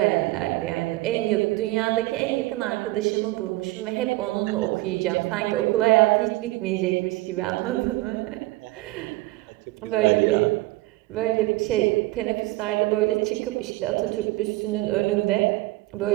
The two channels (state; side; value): quieter; left; 19.7 dB